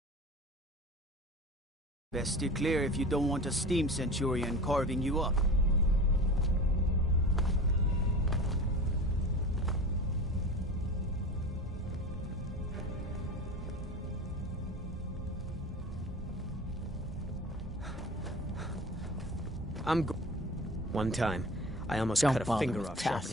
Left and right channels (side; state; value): both; normal; correlation 0.35